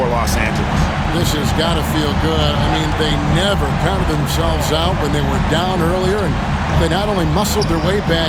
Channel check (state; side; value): identical; both; correlation 1.00